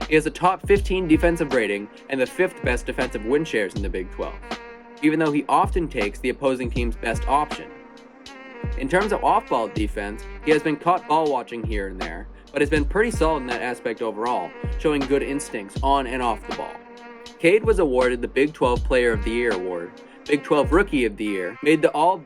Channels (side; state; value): both; identical; correlation 1.00